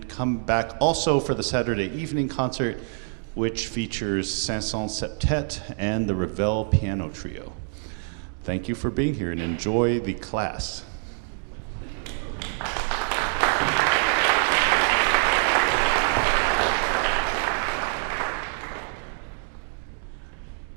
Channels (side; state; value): left; silent; 61 dB below the other